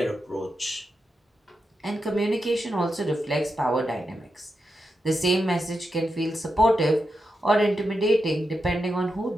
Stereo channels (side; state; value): both; normal; correlation 0.87